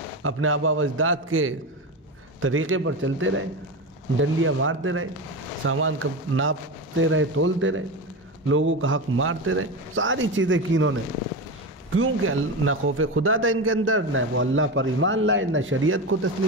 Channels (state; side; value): normal; both; correlation 0.20